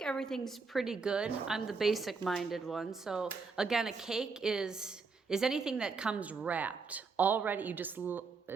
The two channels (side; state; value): left; quieter; 4.7 dB